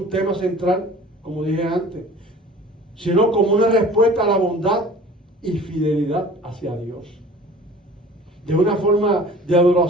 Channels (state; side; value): normal; both; correlation 0.45